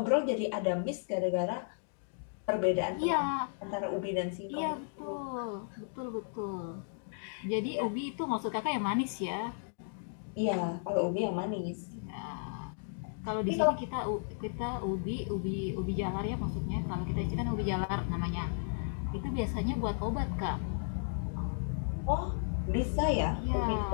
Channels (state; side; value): silent; right; digital silence